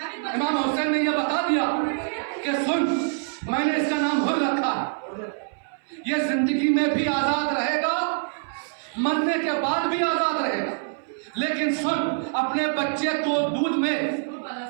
امام حسین نے یہ بتا دیا کہ سن میں نے اس کا نام حر رکھا, یہ زندگی میں بھی آزاد رہے گا, مرنے کے بعد بھی آزاد رہے گا. لیکن سن اپنے بچے کو دودھ میں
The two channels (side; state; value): left; silent; 59 dB below the other